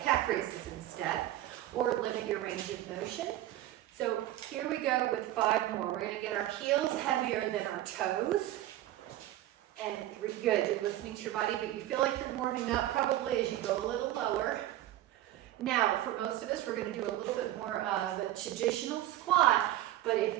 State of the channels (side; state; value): left; quieter; 14.2 dB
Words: calf raises instead, or limit your range of motion. So here we go with 5 more. We're going to get our heels heavier than our toes. And good, you're listening to your body, but you feel like you're warming up probably as you go a little lower. Now, for most of us, we're going to do a little bit more of a traditional squat, but